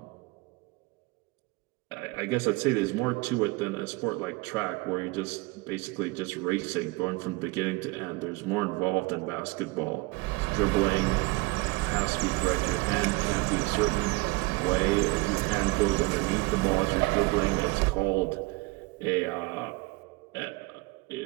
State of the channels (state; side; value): quieter; left; 24.2 dB